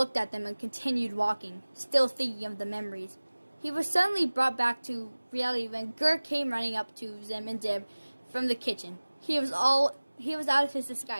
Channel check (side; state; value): both; inverted; correlation -1.00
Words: at them and continued walking, still thinking of the memories. He was suddenly brought back to reality when Gur came running up to Zim and Dib from the kitchen. He was all he was out of his